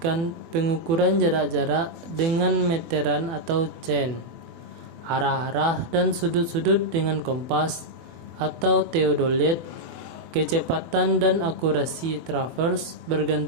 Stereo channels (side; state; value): left; late; 24 ms